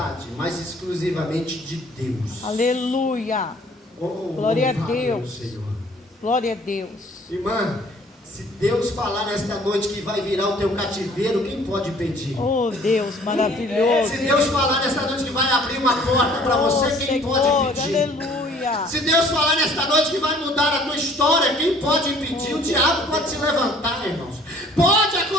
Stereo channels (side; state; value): both; normal; correlation 0.55